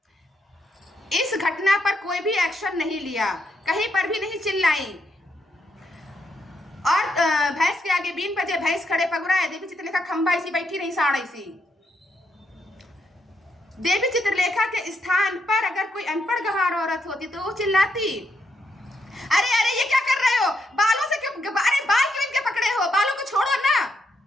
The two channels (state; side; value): normal; both; correlation 0.78